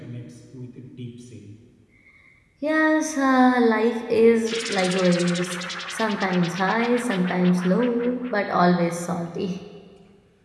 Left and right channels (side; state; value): both; identical; correlation 1.00